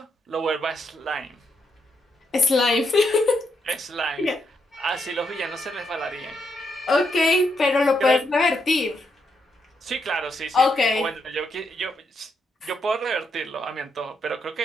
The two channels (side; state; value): both; normal; correlation 0.79